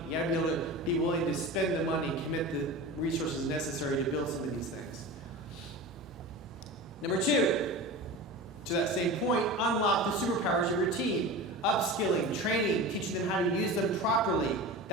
You have to be able to be willing to spend the money and commit the resources necessary to build some of these things. Number two, to that same point, unlock the superpowers of your team. Upskilling, training, teaching them how to use them properly.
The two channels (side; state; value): both; normal; correlation 0.31